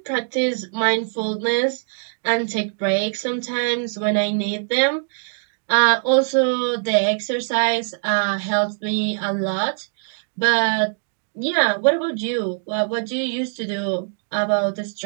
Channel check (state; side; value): silent; left; digital silence